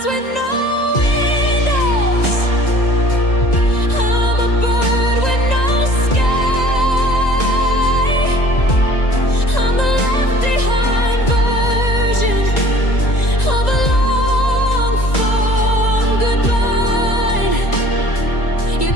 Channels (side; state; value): right; late; 1.9 ms